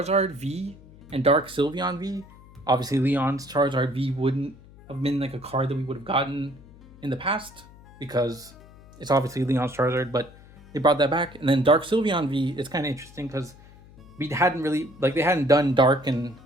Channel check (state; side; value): noise; left; hum, 22 dB below the sound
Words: V and Dark Sylveon V. Obviously, Leon's Charizard V wouldn't have been like a card that we would have gotten in the past because it's obviously Leon's Charizard, but they brought that back. And then Dark Sylveon V is kind of interesting because we hadn't really like they hadn't done Dark and